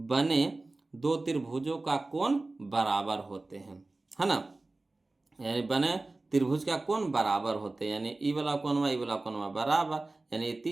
दो त्रिभुजों का कोण बराबर होते हैं, है ना, यानी बने त्रिभुज का कोण बराबर होते हैं, यानी ई वाला कोणमा बराबर, यानी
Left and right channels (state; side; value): quieter; left; 3.1 dB